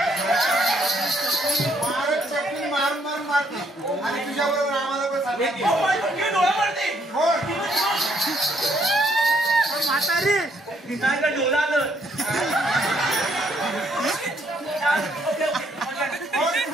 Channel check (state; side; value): normal; both; correlation 0.70